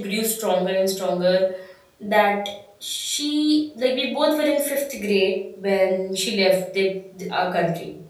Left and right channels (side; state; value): both; identical; correlation 1.00